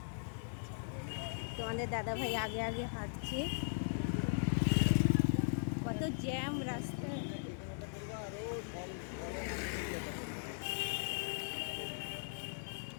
তোমাদের দাদাভাই আগে আগে হাঁটছে, কত জ্যাম রাস্তায়।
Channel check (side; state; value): right; silent; digital silence